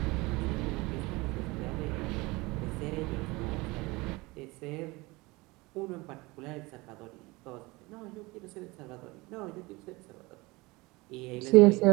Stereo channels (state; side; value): quieter; left; 23.1 dB